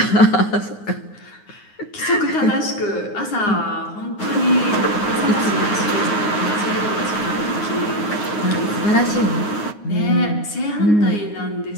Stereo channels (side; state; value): right; late; 9.6 ms